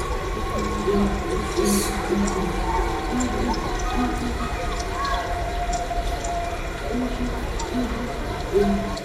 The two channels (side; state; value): both; identical; correlation 1.00